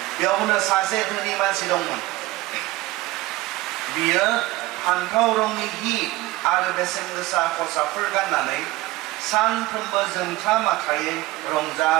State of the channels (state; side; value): quieter; left; 19.2 dB